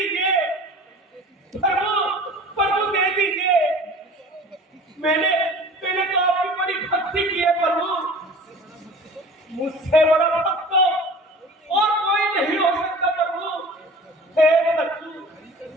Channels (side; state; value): both; normal; correlation 0.42